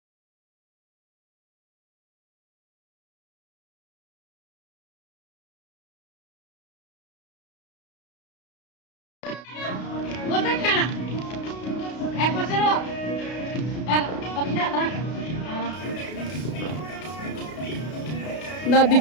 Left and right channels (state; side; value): late; right; 32 ms